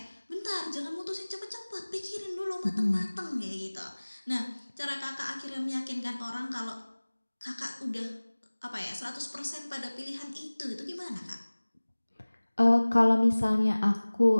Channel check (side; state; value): both; inverted; correlation -1.00